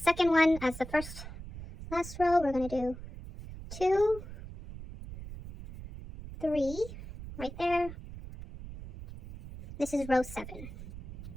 one, as the last row, we're going to do 2, 3, right there. This is row 7.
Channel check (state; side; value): noise; right; rumble, 12 dB below the sound